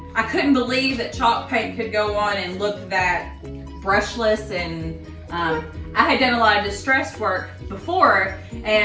I couldn't believe that chalk paint could go on and look that brushless. And I had done a lot of distressed work before,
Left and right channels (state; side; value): identical; both; correlation 1.00